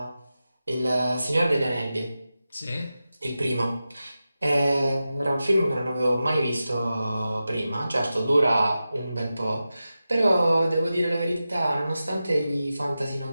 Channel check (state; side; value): inverted; both; correlation -0.92